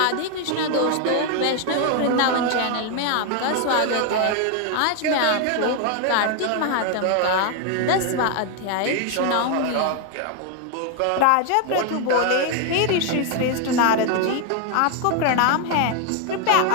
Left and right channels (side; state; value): both; different; correlation 0.01